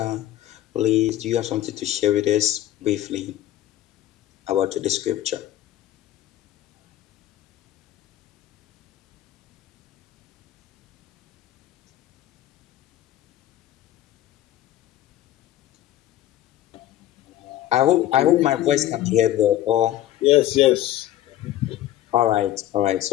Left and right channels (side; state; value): right; quieter; 13.2 dB